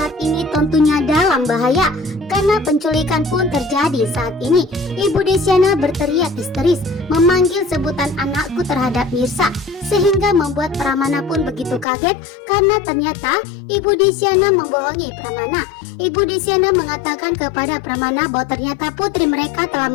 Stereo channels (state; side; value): drops out; right; at 11.9 s